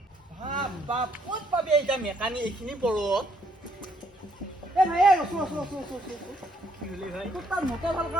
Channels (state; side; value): normal; both; correlation 0.69